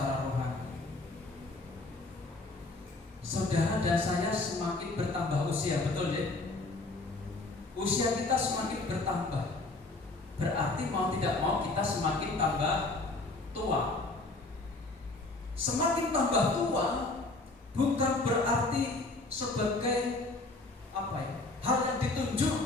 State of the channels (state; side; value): quieter; right; 3.2 dB